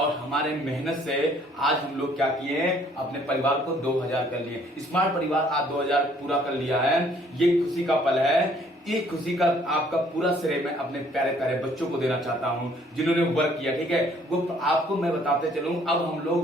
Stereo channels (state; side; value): normal; both; correlation 0.61